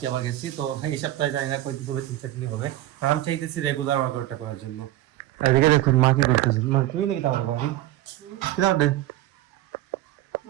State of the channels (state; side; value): quieter; left; 14.8 dB